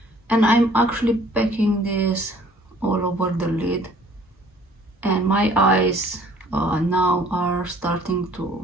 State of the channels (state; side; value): normal; both; correlation 0.55